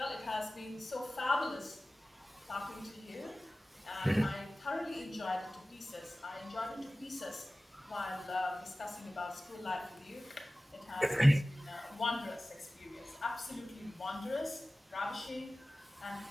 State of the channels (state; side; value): normal; both; correlation 0.97